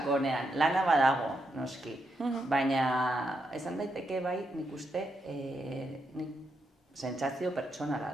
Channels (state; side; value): normal; both; correlation 0.81